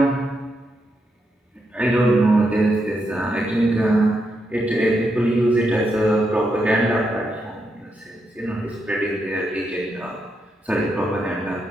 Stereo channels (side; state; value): both; normal; correlation 0.82